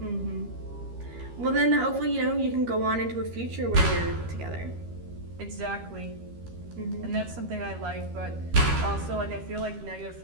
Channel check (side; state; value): left; late; 13 ms